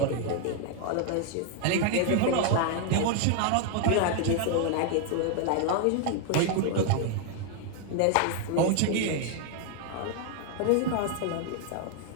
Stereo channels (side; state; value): both; different; correlation 0.00